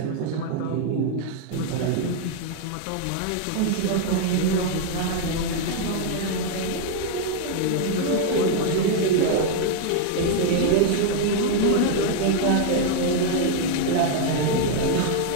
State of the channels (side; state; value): both; different; correlation 0.00